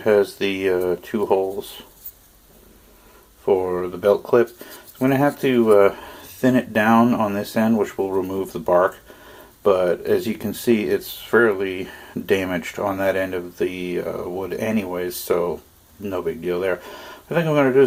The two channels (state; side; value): identical; both; correlation 1.00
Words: has the 2 holes for the belt clip, I'm going to have to thin it down on this end, which will remove the bark. But as you can see, it's fairly damaged on that end of the wood anyways, so no big deal there. What I think I'm going to do